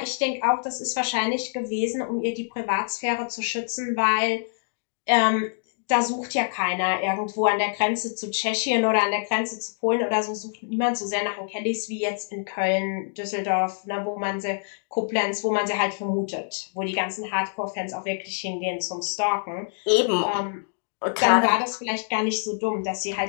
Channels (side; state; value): right; silent; digital silence